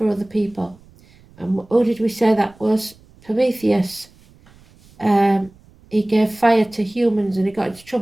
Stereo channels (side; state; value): right; noise; rumble, 27 dB below the sound